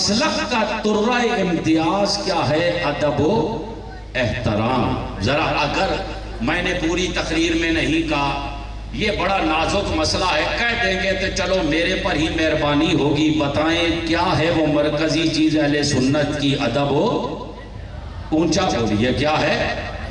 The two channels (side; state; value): both; identical; correlation 1.00